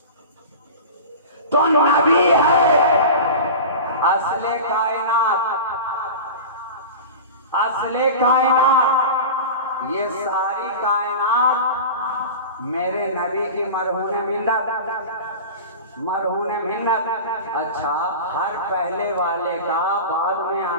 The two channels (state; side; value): inverted; both; correlation -0.31